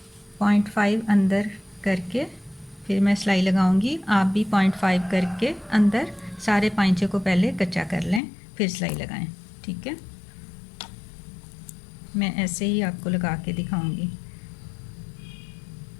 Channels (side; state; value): right; drops out; at 8.2 s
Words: 0.5 अंदर करके फिर मैं सिलाई लगाऊंगी। आप भी 0.5 करके अंदर सारे पांचे को पहले कच्चा कर लें, फिर सिलाई लगाएं। ठीक है, मैं ऐसे ही आपको लगा के दिखाऊंगी।